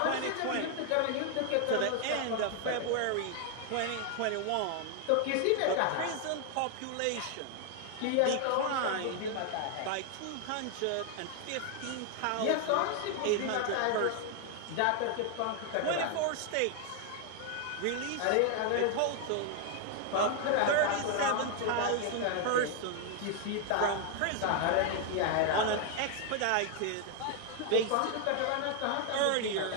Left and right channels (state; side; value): different; both; correlation 0.00